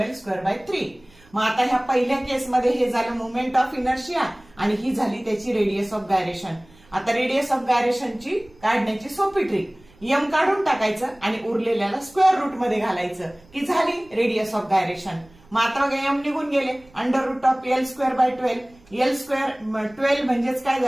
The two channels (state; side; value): noise; right; rumble, 28 dB below the sound